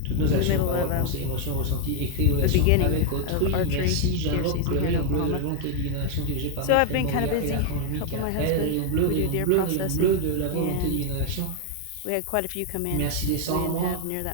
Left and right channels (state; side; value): different; both; correlation 0.01